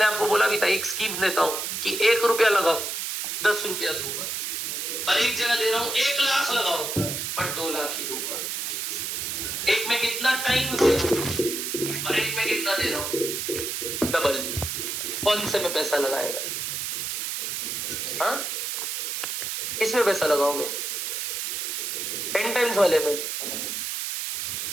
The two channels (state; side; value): noise; right; hiss, 3 dB below the sound